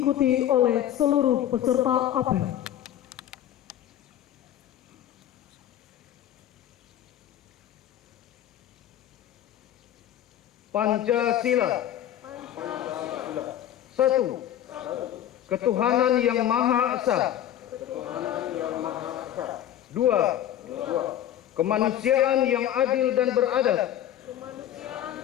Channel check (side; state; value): right; quieter; 11.4 dB